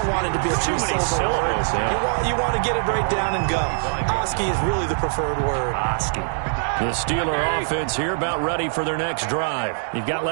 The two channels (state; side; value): silent; left; digital silence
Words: want it to be a too many syllables. Yeah. You want to get it right down and go. Oski is really the preferred word. Oski. The Steeler offense here about ready for their next drive. You've got